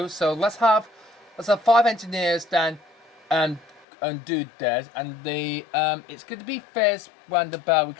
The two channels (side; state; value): right; drops out; at 3.9 s